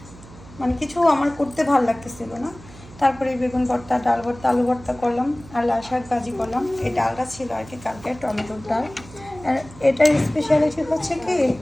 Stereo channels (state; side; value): noise; right; hum, 19 dB below the sound